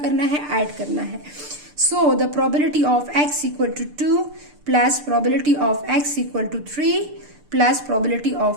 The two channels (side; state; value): left; late; 6.8 ms